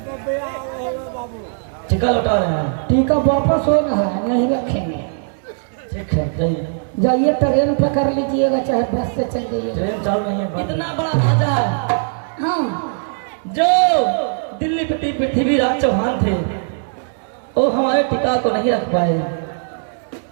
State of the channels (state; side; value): silent; left; 66 dB below the other